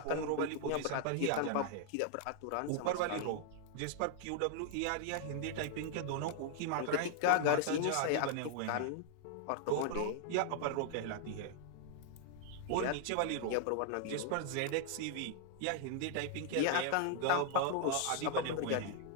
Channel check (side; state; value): both; different; correlation 0.00